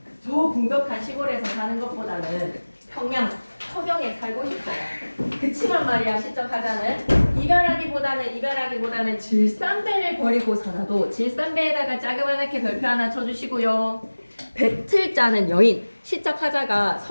저 궁벽한 시골에서 사는 것보다는 평양 서경에 살고 싶어요. 그치만 말이야 시적 하자는 이별하기보다는 질산배를 버리고서라도 질산배에다가 자그마하게 별표 하나 쳐주시고요. 배틀 짜는 여인 시적 하자가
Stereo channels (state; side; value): inverted; both; correlation -1.00